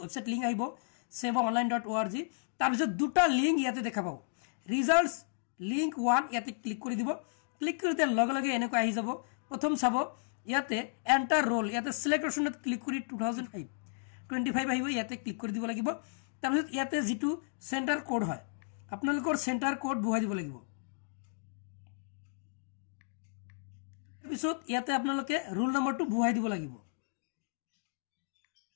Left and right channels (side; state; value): right; silent; digital silence